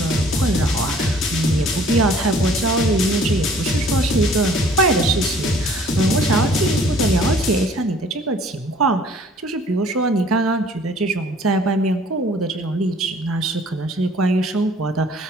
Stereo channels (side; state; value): both; normal; correlation 0.55